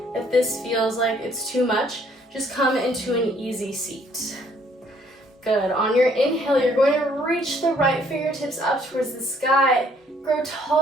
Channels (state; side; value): normal; both; correlation 0.63